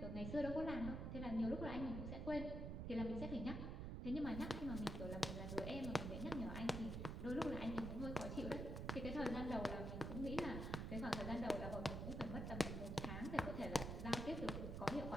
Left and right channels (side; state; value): right; noise; rumble, 4 dB below the sound